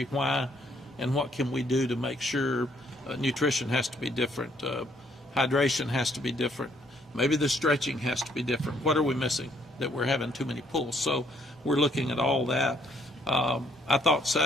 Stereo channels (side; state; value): both; normal; correlation 0.67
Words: why, and what can we do to make sure nutrition has to be different, hydration has to be different, maybe the stretching has to be different. What are we missing that we're having too many pulls? So we're looking at all that. I thought